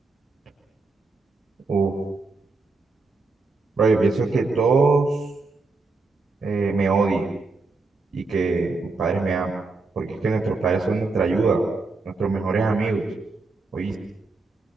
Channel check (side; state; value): left; quieter; 3.8 dB